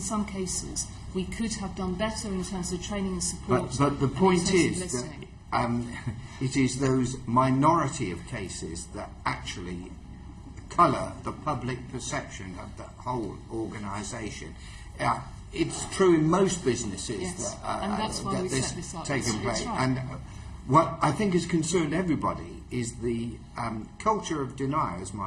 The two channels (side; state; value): both; identical; correlation 1.00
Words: some cases we could have done better in terms of training and support. But the point is that it is those minority of cases that actually colour the public perception of the whole organisation. It's true in most businesses, yes, that, and that's why we this set this up. taking place. Right. And what I think has concerned everybody is the culture of denial, as